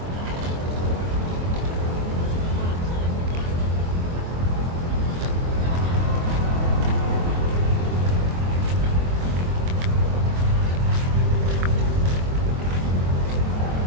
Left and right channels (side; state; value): left; late; 23 ms